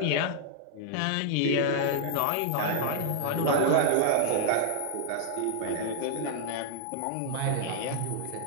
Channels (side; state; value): both; different; correlation -0.01